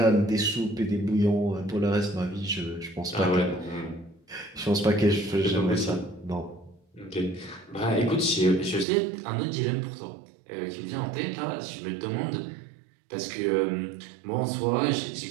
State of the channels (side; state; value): left; drops out; at 8.8 s